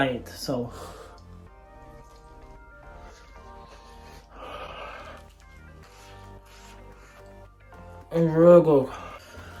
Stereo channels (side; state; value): both; identical; correlation 1.00